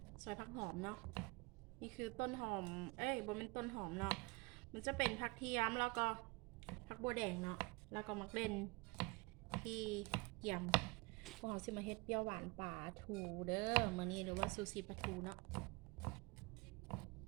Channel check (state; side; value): quieter; left; 26.0 dB